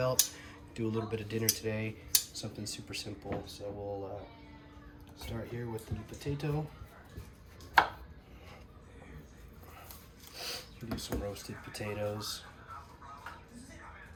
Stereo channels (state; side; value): identical; both; correlation 1.00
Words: Do a little bit of dinner today, something super simple. So we'll start here with the potato. Do some roasted potatoes.